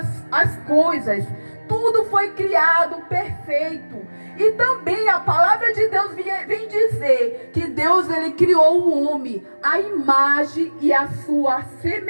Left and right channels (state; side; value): inverted; both; correlation -1.00